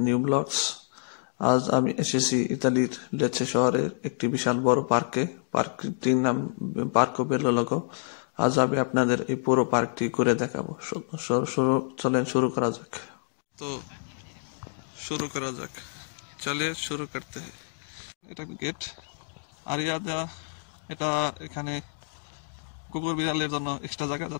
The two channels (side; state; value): right; silent; digital silence